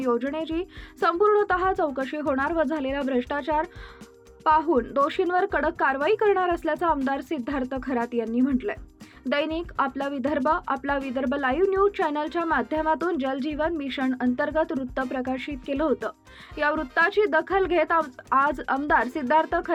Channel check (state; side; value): identical; both; correlation 1.00